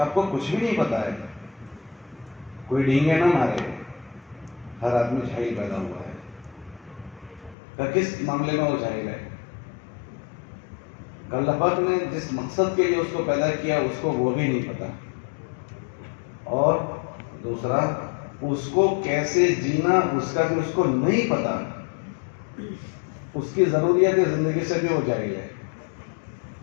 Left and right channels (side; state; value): right; drops out; at 7.6 s